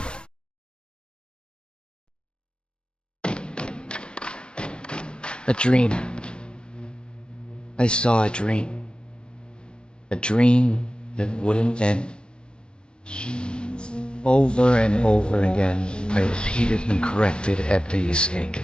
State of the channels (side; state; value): right; late; 0.053 ms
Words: A dream. I saw a dream. A dream that wouldn't end. Over and over again, I repeated and corrected every mistake.